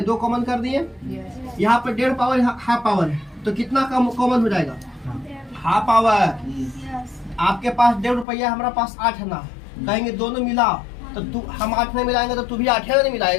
2 कॉमन कर दिए। यहाँ पर 1.5 पावर हाफ पावर है तो कितना कॉमन हो जाएगा, हाफ पावर। आपके पास 1.5 रुपया, हमारा पास 8 ना, कहेंगे दोनों मिला तो तू, हम 8 नहीं मिलाएंगे तो तू भी 8 नहीं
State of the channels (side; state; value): right; drops out; at 8.2 s